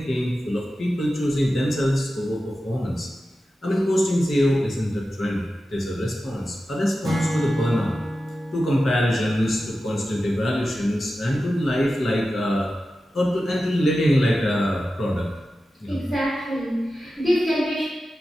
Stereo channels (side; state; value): both; normal; correlation 0.93